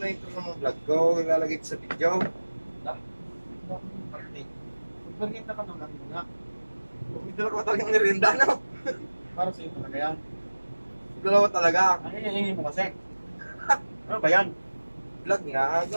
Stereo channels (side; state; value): both; inverted; correlation -1.00